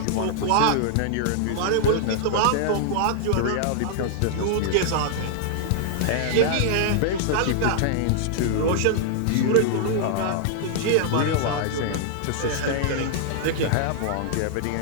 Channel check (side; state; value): both; different; correlation -0.01